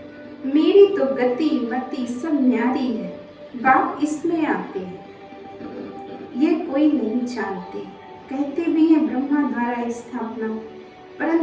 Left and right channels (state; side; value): identical; both; correlation 1.00